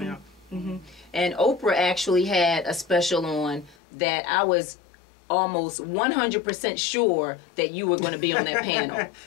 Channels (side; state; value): right; drops out; at 3.8 s